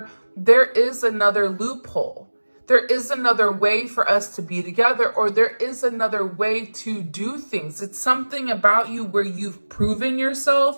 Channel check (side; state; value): both; inverted; correlation -1.00